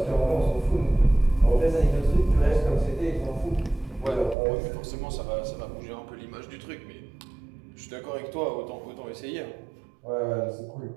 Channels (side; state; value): left; drops out; at 4.4 s